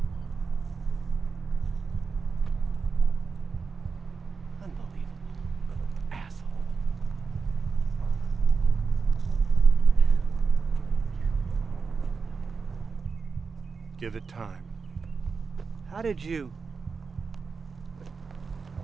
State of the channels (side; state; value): left; quieter; 5.0 dB